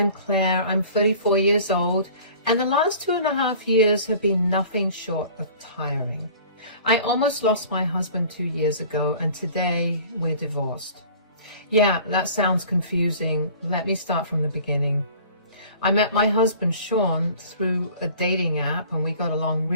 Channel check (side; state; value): both; inverted; correlation -0.47